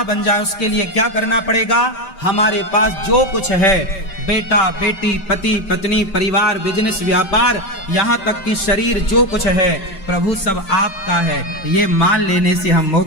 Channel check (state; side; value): late; right; 5.2 ms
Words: बन जाए। उसके लिए क्या करना पड़ेगा? हमारे पास जो कुछ है, बेटा बेटी, पति पत्नी, परिवार, बिजनेस, व्यापार, यहाँ तक कि शरीर, जो कुछ है प्रभु सब आपका है, ये मान लेने से हम